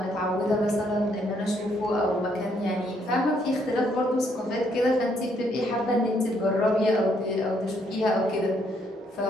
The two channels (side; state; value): both; normal; correlation 0.71